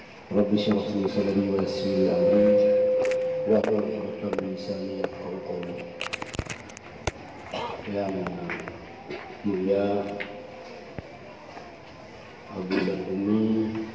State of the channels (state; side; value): identical; both; correlation 1.00